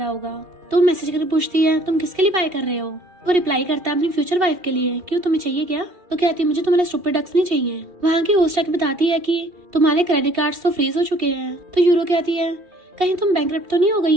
होगा। तो मैसेज करके पूछती है, तुम किसके लिए बाय कर रहे हो? वो रिप्लाई करता है, अपनी फ्यूचर वाइफ के लिए। क्यों, तुम्हें चाहिए क्या? तो कहती है, मुझे तुम्हारे स्टूपिड डक्स नहीं चाहिए। वहाँ की होस्ट आके बताती है कि तुम्हारे क्रेडिट कार्ड्स तो फ्रीज हो चुके हैं। तो यूरो कहती है, कहीं तुम बैंकरप्ट तो नहीं हो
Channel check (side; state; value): left; late; 2.7 ms